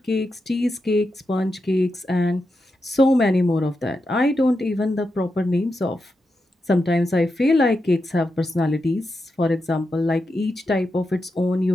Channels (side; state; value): both; normal; correlation 0.87